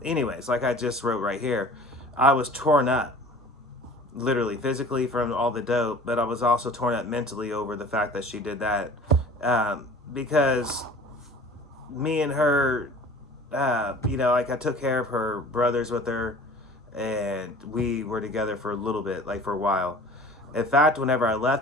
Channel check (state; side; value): normal; both; correlation 0.45